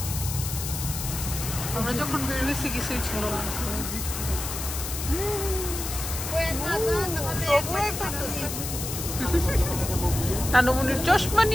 আমরা যখন বের হয়েছি কিছুই ছিল না। নানুমনির চশমা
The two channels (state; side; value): noise; left; hiss, 6 dB below the sound